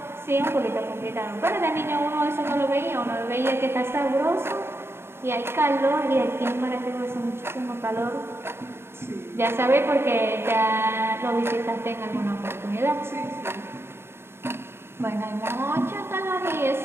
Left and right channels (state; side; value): late; left; 0.12 ms